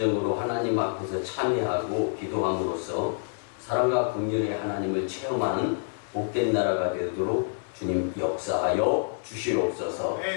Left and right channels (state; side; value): silent; right; 60 dB below the other